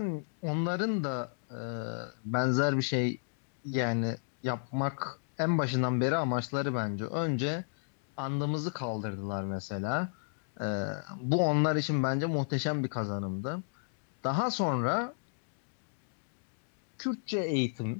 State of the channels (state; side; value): silent; right; digital silence